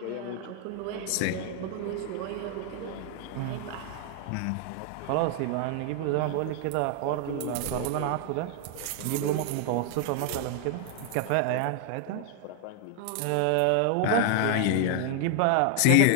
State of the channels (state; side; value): different; both; correlation 0.00